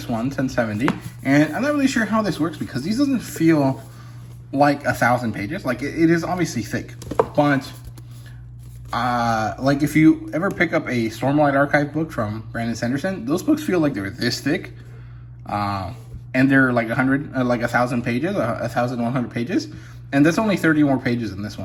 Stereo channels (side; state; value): both; identical; correlation 1.00